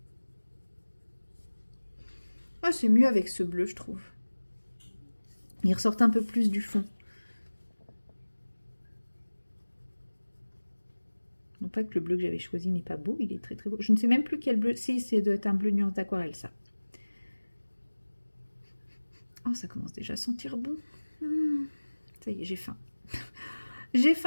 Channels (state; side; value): inverted; both; correlation -1.00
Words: Ah, c'est mieux avec ce bleu, je trouve. Il ressort un peu plus du fond. Non pas que le bleu que j'avais choisi n'est pas beau, il est très très beau. Je ne sais même plus quel bleu. Si, c'est doit être un bleu nuance d'aquarelle, ça. Oh, ça commence déjà à sentir bon. Ça y est, j'ai faim. J'ai